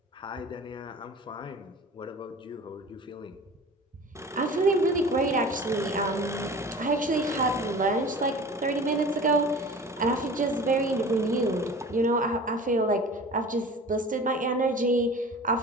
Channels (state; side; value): normal; both; correlation 0.40